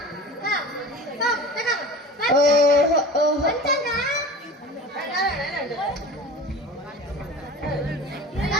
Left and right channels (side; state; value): both; normal; correlation 0.37